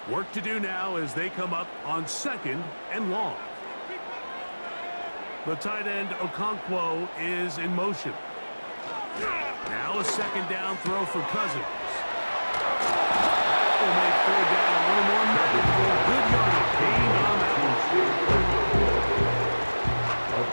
Work to do now as they come up on second and long. The tight end Okonkwo is in motion. Now a second down throw for Cousins. That will make third down a little more manageable. Good yardage gain on that one. A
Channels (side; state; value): both; inverted; correlation -1.00